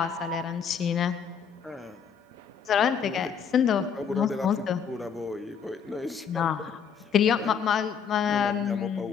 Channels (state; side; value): quieter; right; 7.0 dB